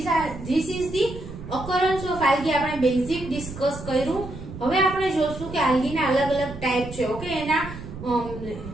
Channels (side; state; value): right; noise; rumble, 11 dB below the sound